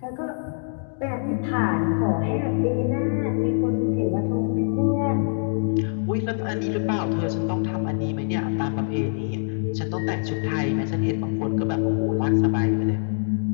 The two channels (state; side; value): silent; right; digital silence